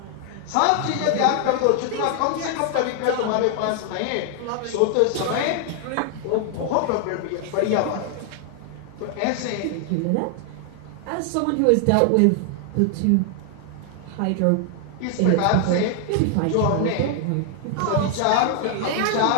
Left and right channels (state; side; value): different; both; correlation 0.00